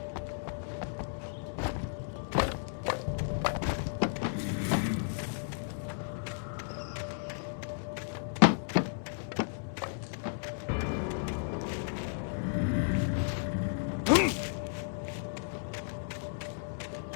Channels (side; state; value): right; silent; digital silence